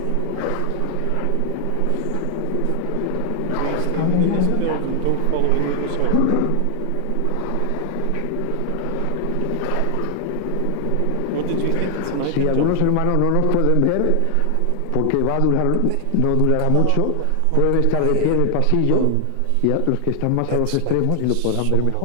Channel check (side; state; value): both; different; correlation 0.00